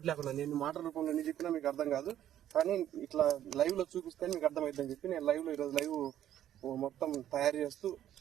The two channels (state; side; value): quieter; left; 11.4 dB